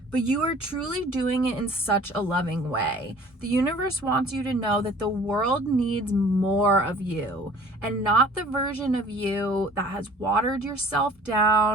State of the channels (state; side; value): normal; both; correlation 0.50